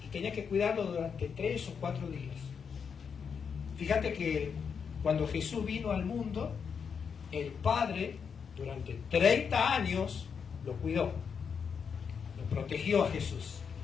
y tenía que cuidarlo durante 3 o 4 días. Fíjate que cuando Jesús vino al mundo, el Padre durante 30 años lo cuidó, lo protegió a Jesús,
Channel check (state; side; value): quieter; right; 6.5 dB